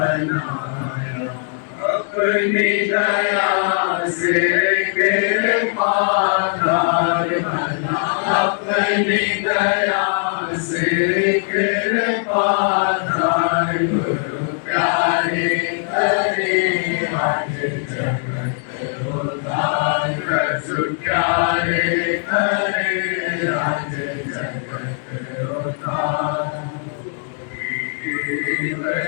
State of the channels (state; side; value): silent; right; 66 dB below the other